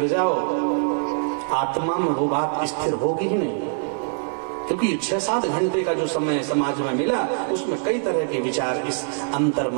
जाओ, आत्मा में वो बात स्थिर होगी ही नहीं, क्योंकि 6-7 घंटे का जो समय समाज में मिला, उसमें कई तरह के विचार इस अंतर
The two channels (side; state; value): left; silent; 63 dB below the other